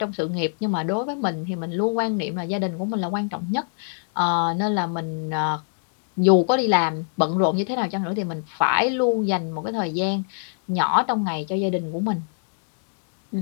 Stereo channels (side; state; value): right; silent; digital silence